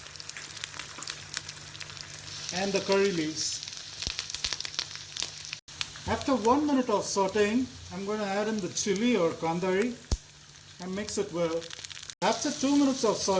and the curry leaves. After 1 minute of sauteing, I'm going to add in the chili or kandari and mix it well. After 2 minutes of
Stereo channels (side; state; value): both; identical; correlation 1.00